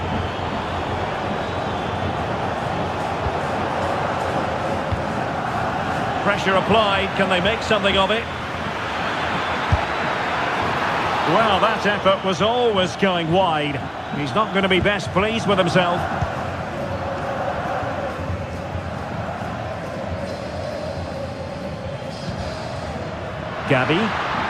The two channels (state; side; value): identical; both; correlation 1.00